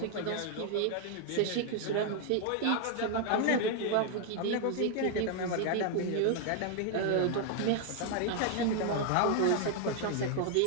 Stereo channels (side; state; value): both; different; correlation 0.00